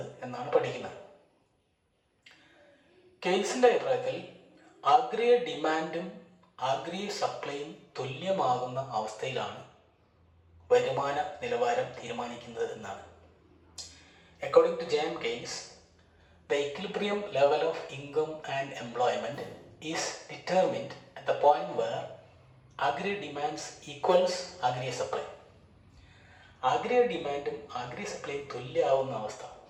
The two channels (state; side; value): identical; both; correlation 1.00